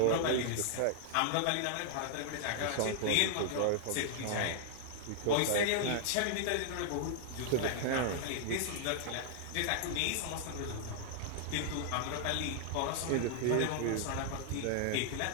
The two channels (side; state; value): both; different; correlation -0.01